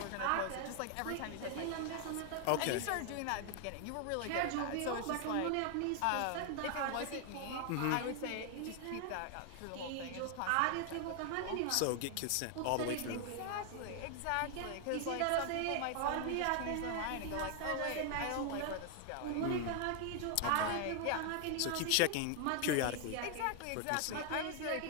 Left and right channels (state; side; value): different; both; correlation 0.00